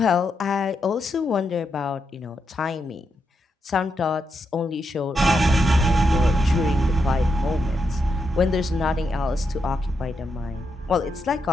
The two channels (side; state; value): both; normal; correlation 0.83